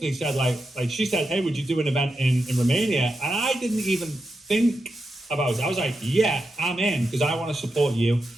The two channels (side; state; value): both; normal; correlation 0.87